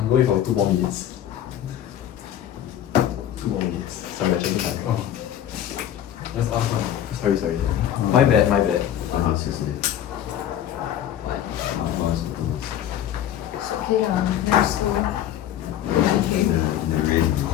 I'm going for 2 more minutes. 2 more minutes. Sorry, I'm checking time. Oh. That's awesome. Sorry. My bad. Seriously. It's okay, let's go. Okay. The rain.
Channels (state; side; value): quieter; right; 11.0 dB